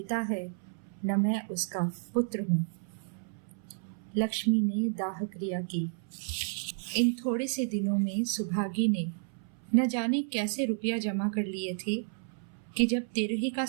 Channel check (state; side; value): silent; left; 57 dB below the other